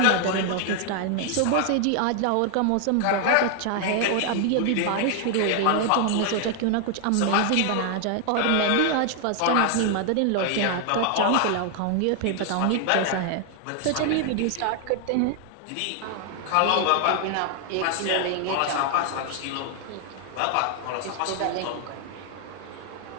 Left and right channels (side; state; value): both; different; correlation 0.00